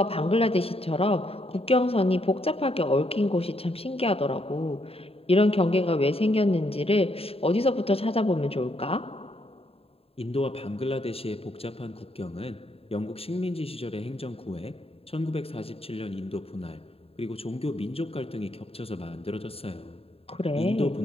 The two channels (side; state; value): right; late; 0.28 ms